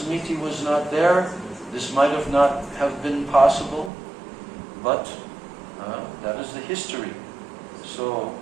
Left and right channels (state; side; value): drops out; left; at 3.9 s